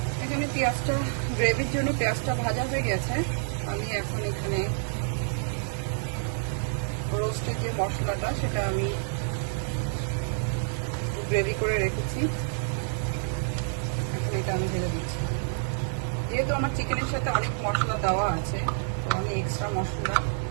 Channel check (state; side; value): silent; left; 59 dB below the other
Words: এখানে পেঁয়াজটা, গ্রেভির জন্য পেঁয়াজটা ভাজা হয়ে গেছে। আমি এখন এখানে রোস্টের যে মশলাটা সেটা আমি গ্রেভি করে রেখেছি, এখন এটা আমি ঢেলে দিচ্ছি। যেহেতু আমার চিকেনের সাথে অনেক মশলা দেওয়া আছে, তো আমি এক্সট্রা মশলা